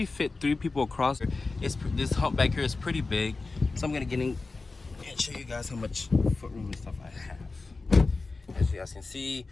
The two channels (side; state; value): right; quieter; 3.8 dB